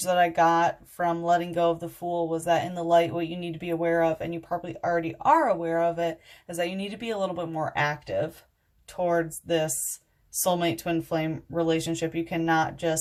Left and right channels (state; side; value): identical; both; correlation 1.00